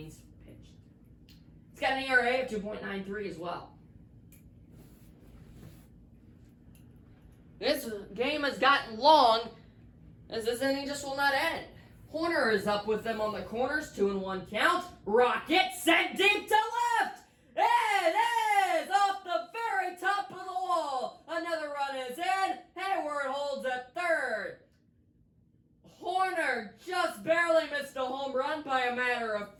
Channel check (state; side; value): identical; both; correlation 1.00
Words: pitched. He's got an ERA of 2.93 as well. This game has gotten long, as this inning just will not end. Horner is up with them on the corners, 2-1 count. Rocket sent deep to left. It is off the very top of the wall. Another run is in. Hayward holds at third. Horner just barely missed a home run by a matter of